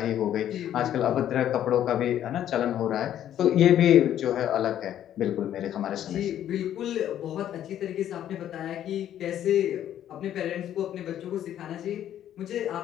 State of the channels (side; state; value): right; quieter; 11.1 dB